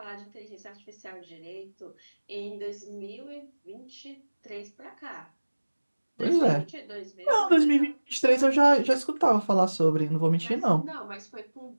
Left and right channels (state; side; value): inverted; both; correlation -1.00